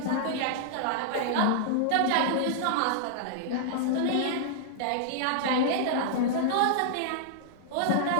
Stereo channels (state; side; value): different; both; correlation -0.01